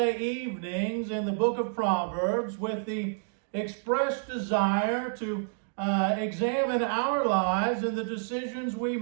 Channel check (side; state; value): left; silent; digital silence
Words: evenings in the Book of Proverbs with the expressed desire to examine our lives and the decisions we